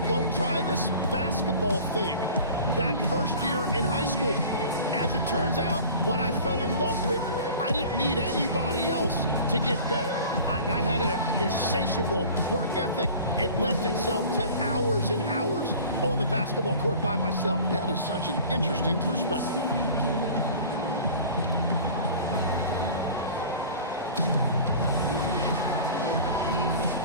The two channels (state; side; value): inverted; both; correlation -0.41